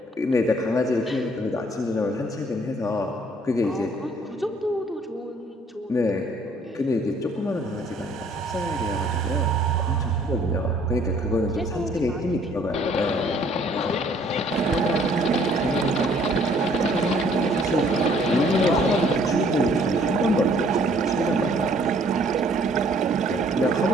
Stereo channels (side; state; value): both; normal; correlation 0.60